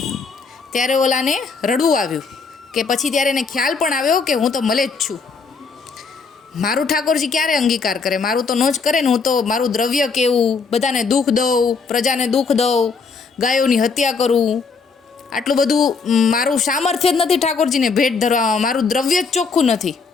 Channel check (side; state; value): right; quieter; 4.9 dB